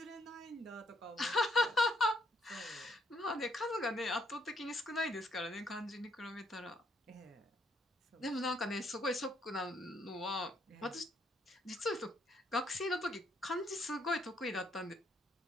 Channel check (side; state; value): both; normal; correlation 0.71